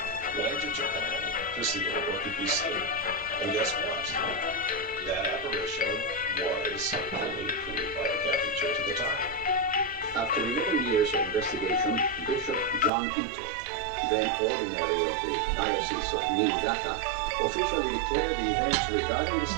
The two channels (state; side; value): drops out; left; at 12.9 s